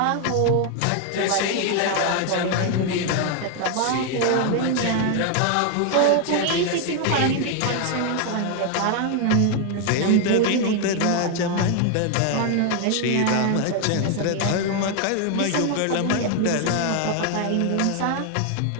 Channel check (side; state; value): both; different; correlation 0.00